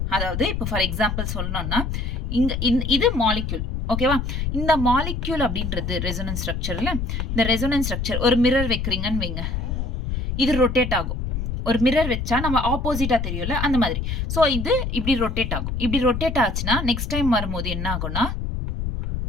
அதாவது இப்போ ஃபார் எக்ஸாம்பிள் சொல்லணும்னா இங்க இது மாலிக்யூல். ஓகேவா? இந்த மாலிக்யூல் அப்படின்றது ரெசோனன்ஸ் ஸ்ட்ரக்சர்ல, இந்த ரெசோனன்ஸ் ஸ்ட்ரக்சர் ஒரு மிரர் வைக்கிறீங்கன்னு வைங்க, இது ரொட்டேட் ஆகும். ஒரு மிரர் வச்சா நம்ம ஆப்போசிட்டா தெரியும்ல, அந்த மாதிரி. ஸோ இது இப்படி ரொட்டேட் ஆகும். இப்படி ரொட்டேட் ஆச்சுன்னா நெக்ஸ்ட் டைம் வரும்போது என்ன ஆகும்னா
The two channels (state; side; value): noise; left; rumble, 3 dB below the sound